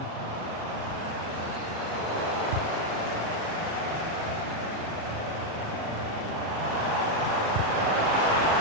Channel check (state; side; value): late; left; 37 ms